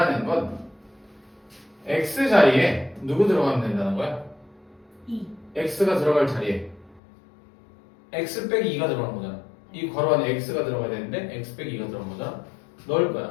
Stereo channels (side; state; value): right; drops out; at 7.0 s